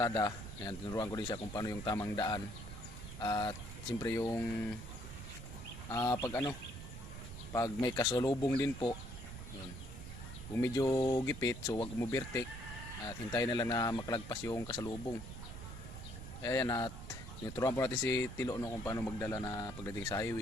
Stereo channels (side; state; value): right; noise; rumble, 10 dB below the sound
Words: ayan, tinuruan ko din siya kung paano yung tamang daan. At siyempre yung pag may kasalubong din po, yun. Kung medyo gipit, so wag mo bertek at hintayin na lang na makalagpas yung kasalubong. Ayan, at tinuturuan po natin si Tilo no, kung paano magdala na pagdating sa